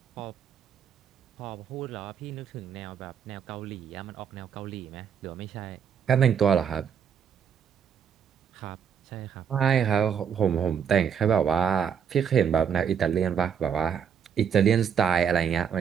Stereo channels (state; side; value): quieter; left; 7.8 dB